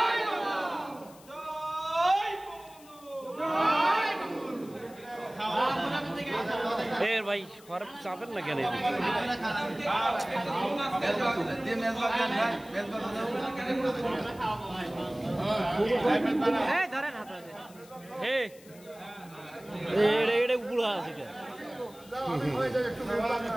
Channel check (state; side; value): noise; left; hiss, 23 dB below the sound